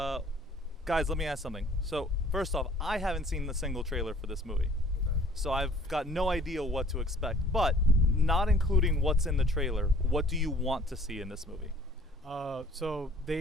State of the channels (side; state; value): both; normal; correlation 0.53